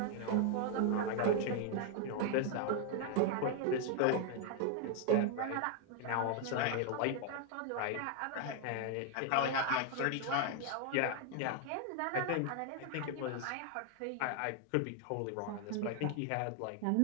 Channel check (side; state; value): both; different; correlation 0.00